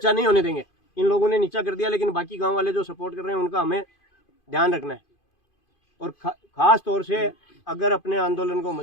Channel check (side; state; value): right; late; 2.5 ms